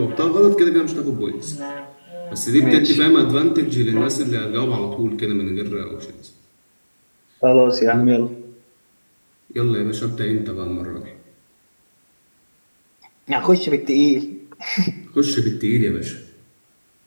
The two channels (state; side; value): inverted; both; correlation -1.00